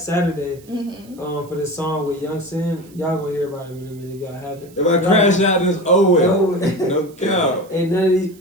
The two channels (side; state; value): right; noise; hiss, 26 dB below the sound